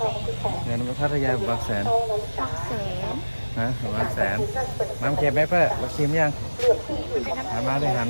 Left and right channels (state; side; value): inverted; both; correlation -1.00